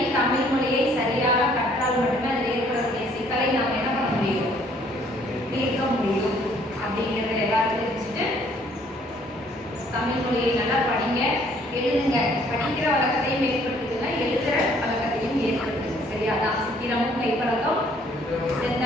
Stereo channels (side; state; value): both; normal; correlation 0.62